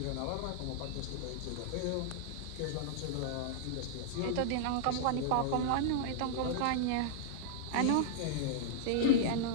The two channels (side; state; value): both; different; correlation -0.01